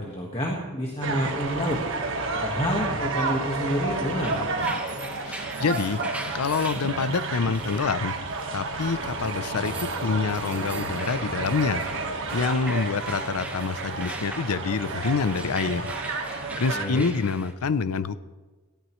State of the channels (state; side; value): normal; both; correlation 0.21